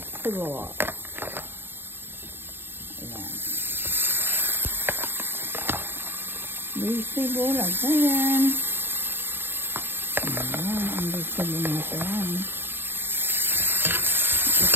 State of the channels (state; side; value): late; left; 0.10 ms